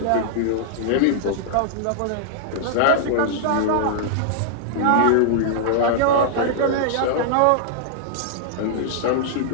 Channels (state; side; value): different; both; correlation -0.01